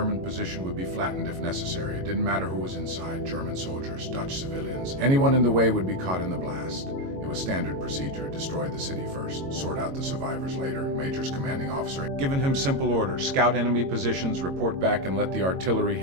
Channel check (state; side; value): late; left; 22 ms